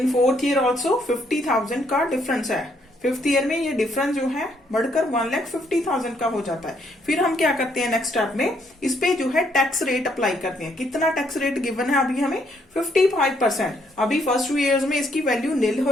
fourth year also 50,000 का डिफरेंस है। फिफ्थ ईयर में ये डिफरेंस जो है बढ़कर 1,50,000 का हो जाता है। फिर हम क्या करते हैं नेक्स्ट स्टेप में? इस पे जो है टैक्स रेट अप्लाई करते हैं। कितना टैक्स रेट गिवन है अभी हमें? 55%। अभी फर्स्ट 2 years में इसकी वैल्यू नील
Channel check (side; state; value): both; normal; correlation 0.71